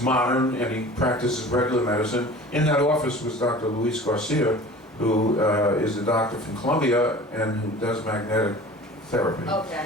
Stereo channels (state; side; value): normal; both; correlation 0.41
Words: modern, and he practices regular medicine. In that office was Dr. Luis Garcia, who is a doctor from Colombia and who does magnetic therapy.